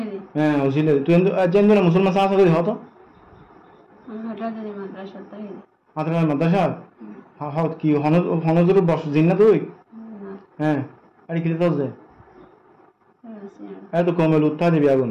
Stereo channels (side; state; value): both; identical; correlation 1.00